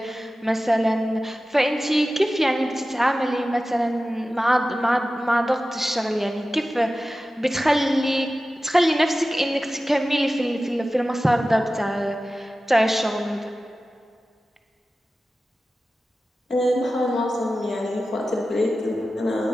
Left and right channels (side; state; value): both; normal; correlation 0.95